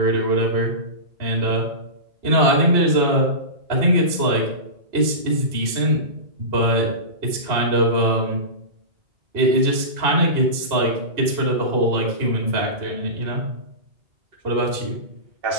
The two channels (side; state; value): left; late; 2.8 ms